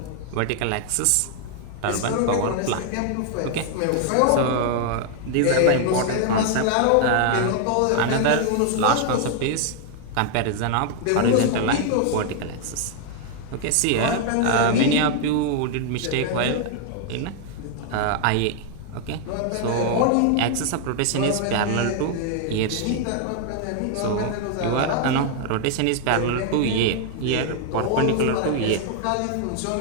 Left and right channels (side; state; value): both; different; correlation 0.00